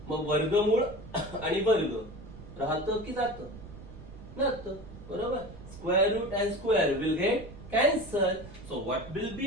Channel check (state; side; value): noise; right; rumble, 15 dB below the sound